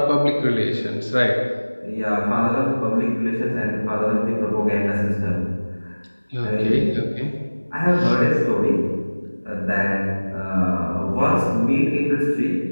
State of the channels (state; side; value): inverted; both; correlation -1.00